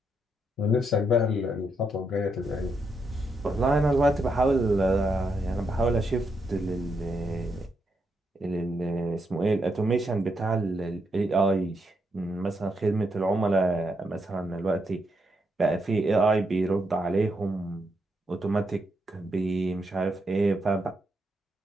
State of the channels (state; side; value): normal; both; correlation 0.80